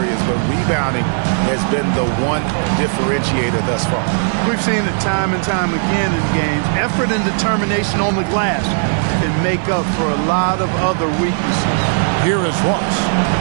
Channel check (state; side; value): silent; left; digital silence